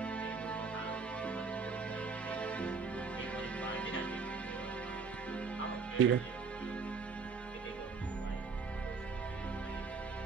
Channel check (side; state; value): left; quieter; 4.8 dB